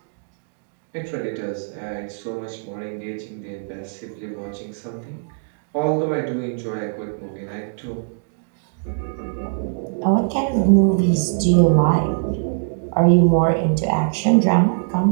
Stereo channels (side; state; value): left; silent; digital silence